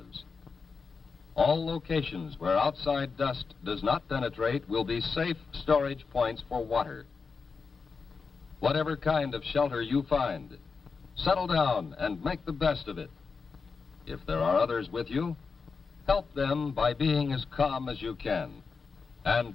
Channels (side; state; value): right; quieter; 5.0 dB